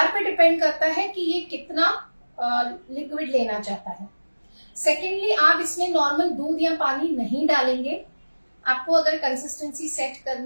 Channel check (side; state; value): both; inverted; correlation -1.00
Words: पे डिपेंड करता है कि ये कितना लिक्विड लेना चाहता है। सेकेंडली, आप इसमें नॉर्मल दूध या पानी नहीं डालेंगे। आपको अगर कंसिस्टेंसी सेट